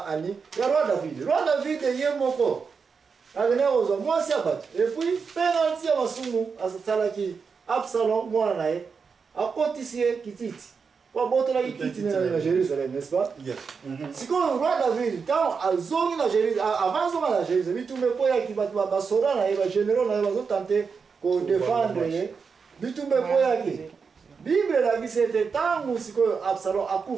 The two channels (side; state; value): left; quieter; 5.5 dB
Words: ani ya roi David ye moko avene ozwa mwasi abatu et puis penalty ya masumu asalaki Absalom mwana naye akotisie kititi. Kwa boto la kititi na Jérusalem, n'est-ce pas? Yes. Si quand le roi David, quand azongi na Jérusalem, avant zonga na Jérusalem, bitumbe po ya kibatu ba sora na ba généraux na ba tenter ko défendre ye. Bitumbe po ya ki. Bible la bi c'était tangu siko Absalom